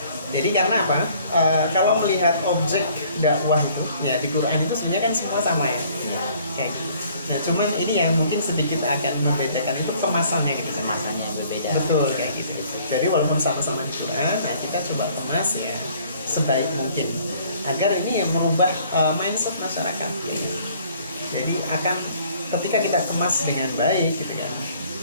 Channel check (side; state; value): both; inverted; correlation -0.57